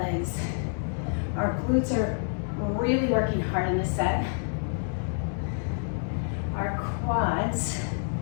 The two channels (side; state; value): right; silent; digital silence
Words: Our glutes are really working hard in this set. Our quads,